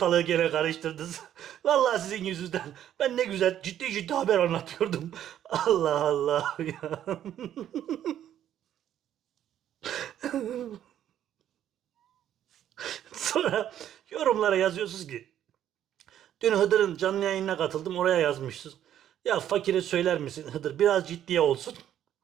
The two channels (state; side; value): quieter; left; 10.9 dB